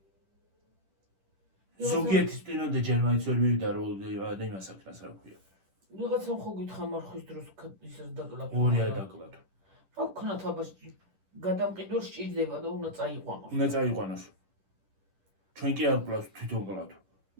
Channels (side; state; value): left; late; 10 ms